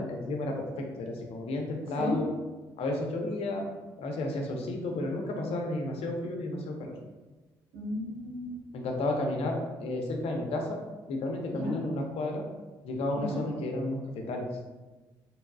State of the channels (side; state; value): both; normal; correlation 0.65